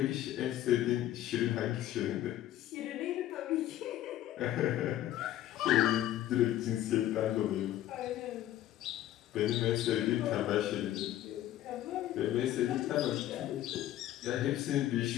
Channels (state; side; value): quieter; right; 13.1 dB